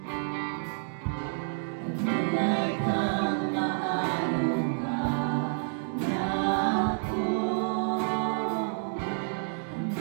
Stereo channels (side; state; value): left; silent; digital silence